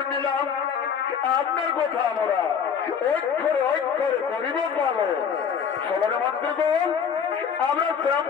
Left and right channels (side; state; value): right; quieter; 7.2 dB